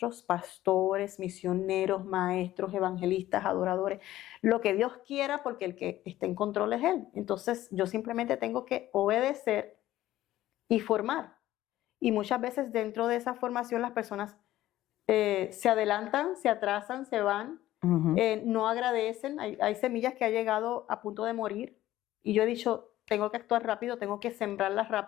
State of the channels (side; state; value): right; quieter; 14.6 dB